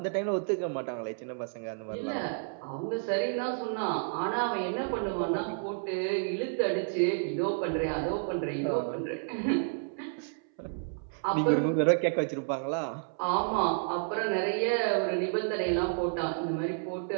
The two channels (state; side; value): silent; left; 57 dB below the other